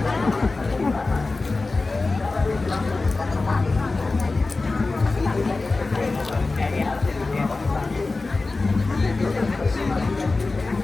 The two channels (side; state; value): right; quieter; 3.6 dB